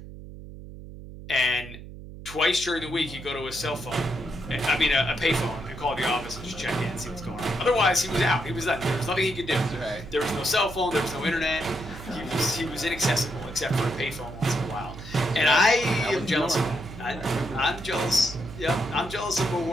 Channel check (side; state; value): right; noise; hum, 13 dB below the sound